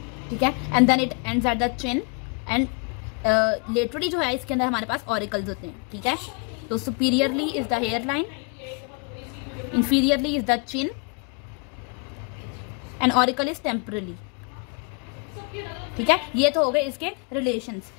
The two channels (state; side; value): quieter; right; 31.6 dB